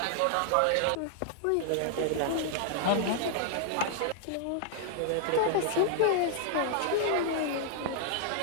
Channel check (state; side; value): different; both; correlation 0.00